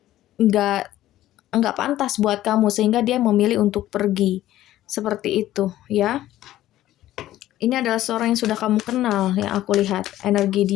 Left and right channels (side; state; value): right; quieter; 14.1 dB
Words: nggak nggak pantas buat kamu, sehingga dia memilih untuk pergi. Seperti itu ya. Ini adalah seorang yang sudah kamu kenal, yang aku lihat. Energi